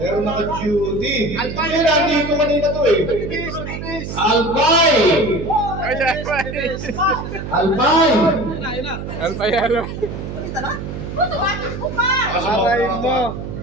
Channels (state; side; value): noise; right; hum, 7 dB below the sound